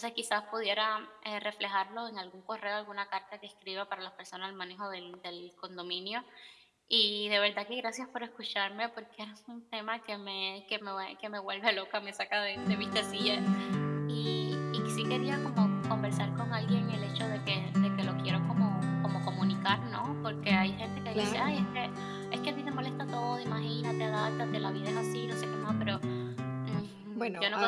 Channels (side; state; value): both; identical; correlation 1.00